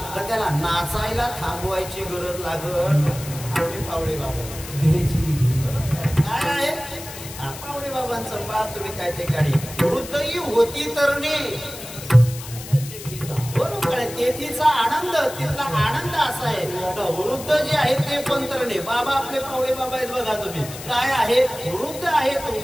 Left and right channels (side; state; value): left; noise; hiss, 13 dB below the sound